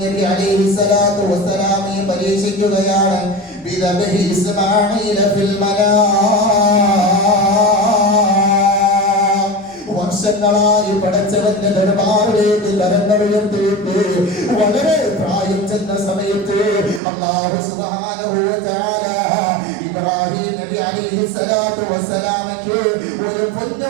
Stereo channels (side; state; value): left; drops out; at 17.0 s